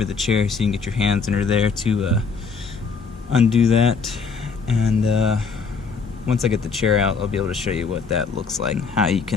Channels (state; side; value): quieter; right; 5.2 dB